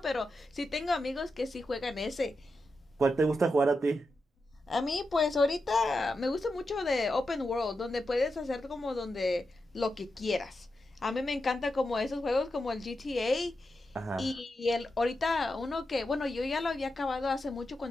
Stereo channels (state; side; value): normal; both; correlation 0.88